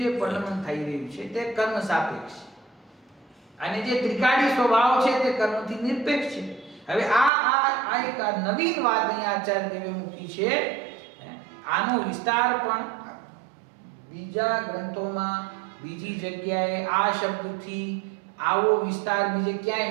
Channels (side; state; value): left; drops out; at 7.3 s